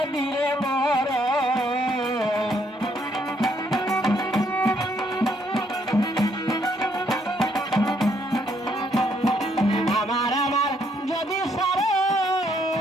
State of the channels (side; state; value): both; normal; correlation 0.71